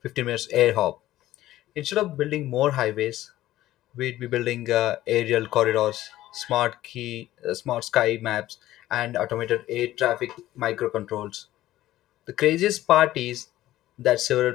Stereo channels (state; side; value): quieter; right; 14.8 dB